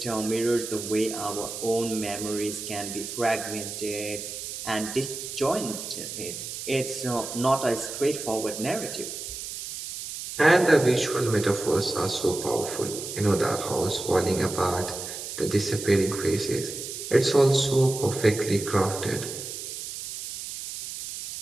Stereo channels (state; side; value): noise; right; hiss, 8 dB below the sound